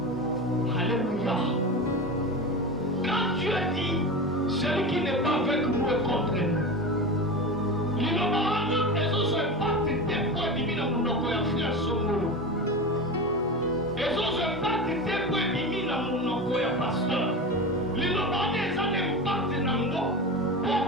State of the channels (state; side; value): normal; both; correlation 0.26